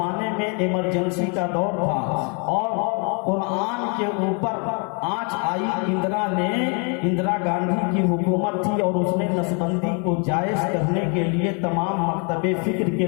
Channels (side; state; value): right; quieter; 36.3 dB